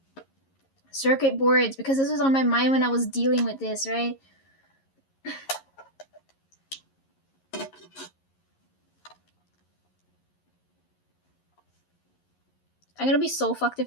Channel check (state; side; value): late; right; 11 ms